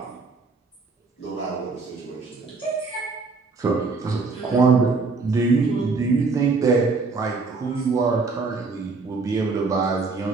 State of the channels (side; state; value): left; quieter; 4.2 dB